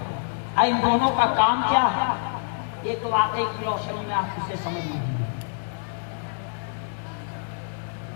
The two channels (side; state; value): right; silent; digital silence